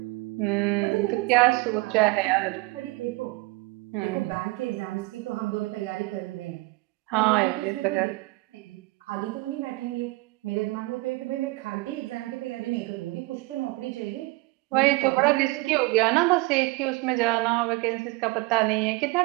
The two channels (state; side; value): quieter; left; 23.1 dB